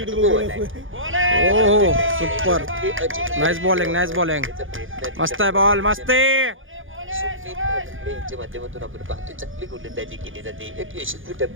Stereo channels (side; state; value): left; late; 0.58 ms